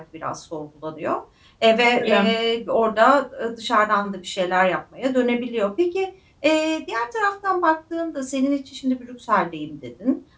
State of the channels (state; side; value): identical; both; correlation 1.00